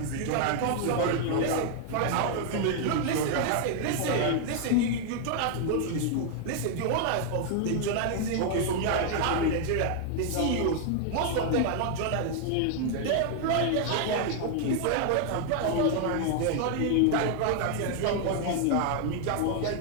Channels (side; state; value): both; different; correlation 0.00